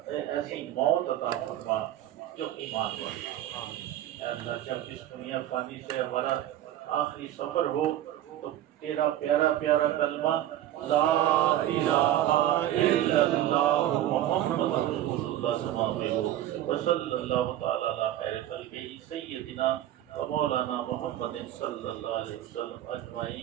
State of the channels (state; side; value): quieter; left; 12.7 dB